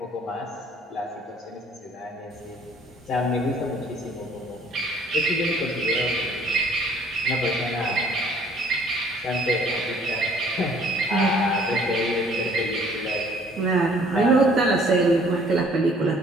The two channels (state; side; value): normal; both; correlation 0.58